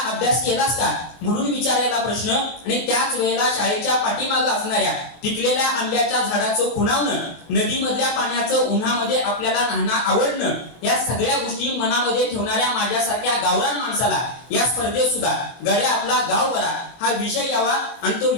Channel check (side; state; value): right; late; 24 ms